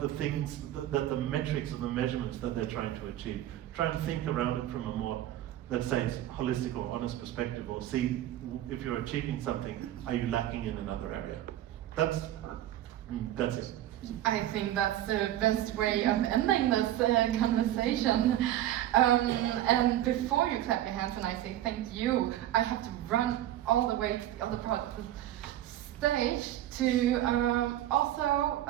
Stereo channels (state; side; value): quieter; left; 13.1 dB